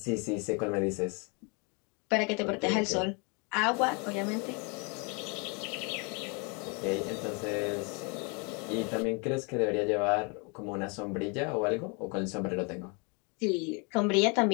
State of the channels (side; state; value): right; quieter; 32.9 dB